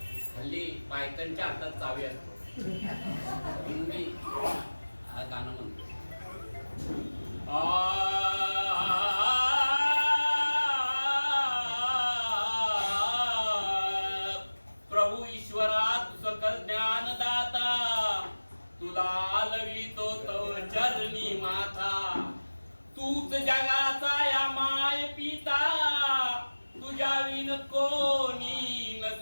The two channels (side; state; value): both; inverted; correlation -1.00